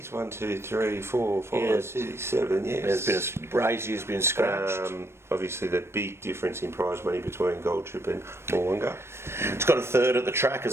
1, 2, 3, 4, 5, 6, 7. Yes. There's been has been scratched. Obviously, the big difference in prize money between Gold Trip and Moolunga. It's got a third at the track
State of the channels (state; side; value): late; left; 0.12 ms